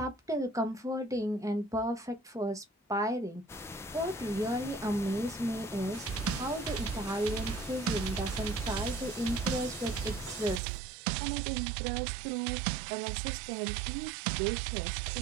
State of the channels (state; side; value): drops out; left; at 10.6 s